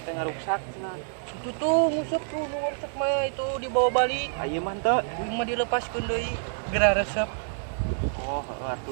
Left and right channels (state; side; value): silent; left; digital silence